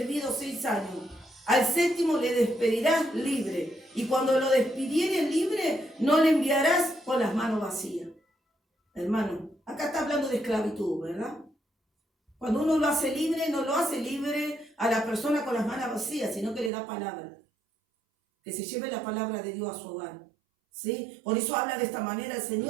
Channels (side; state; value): left; drops out; at 16.7 s